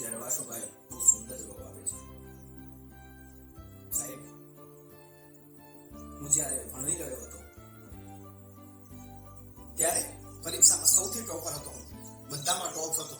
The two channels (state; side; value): identical; both; correlation 1.00